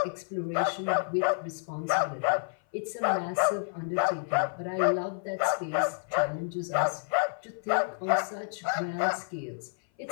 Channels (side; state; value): right; silent; 56 dB below the other